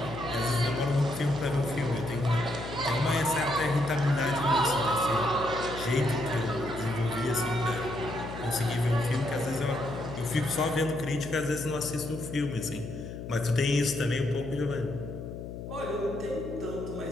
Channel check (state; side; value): noise; left; hum, 9 dB below the sound